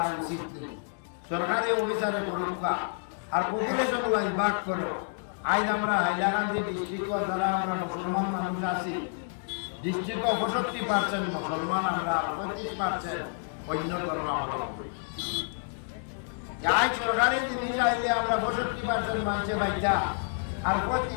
উচিত নেই। সরকারি অফিসারে করুকা আর পপুলেশন ওয়াইজ ভাগ করো। আজ আমরা হাইলাকান্দি ডিস্ট্রিক্ট যারা আমরা মুসলমান মানুষ আছি, ডিস্ট্রিক্ট 65% মুসলমান, আমরা 35% অন্য ধর্মাবলম্বী। আজ সরকারি জিনিস আইলে আমরা 65% মানুষে বাইটা আর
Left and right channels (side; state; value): right; silent; 58 dB below the other